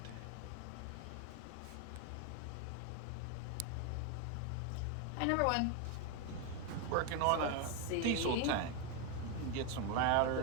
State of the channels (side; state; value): both; different; correlation 0.01